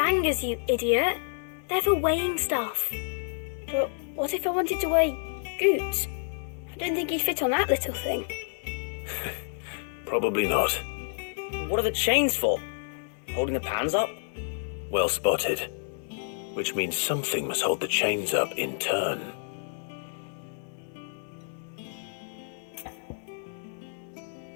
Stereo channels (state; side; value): silent; right; 59 dB below the other